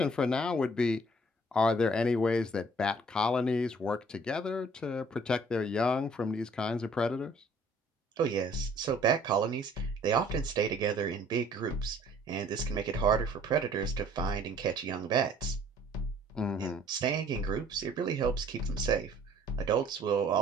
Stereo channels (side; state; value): both; normal; correlation 0.56